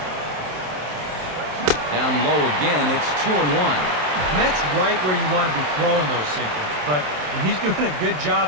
Down low again, it's 2-1. And that's right where you want to be throwing those sinkers, but he's doing a good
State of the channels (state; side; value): late; left; 27 ms